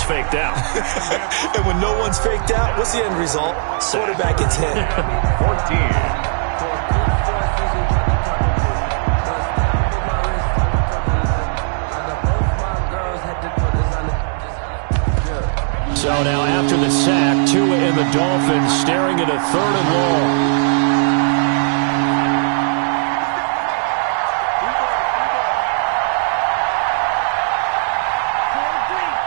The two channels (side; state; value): left; silent; digital silence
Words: faked out. And when no one's faked out, what's the end result? Quarterback gets hit. 14. So now after the sack, Tua and the Dolphins staring at a 3rd and long.